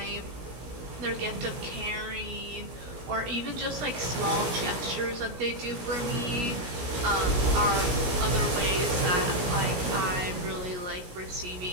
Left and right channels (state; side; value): late; left; 17 ms